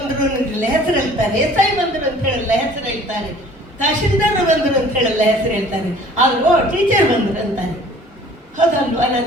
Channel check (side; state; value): both; normal; correlation 0.51